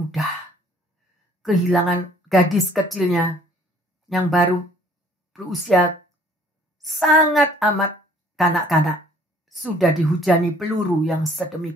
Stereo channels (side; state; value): both; normal; correlation 0.57